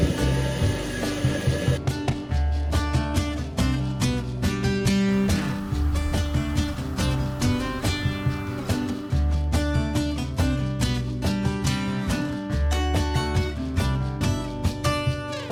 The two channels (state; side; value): identical; both; correlation 1.00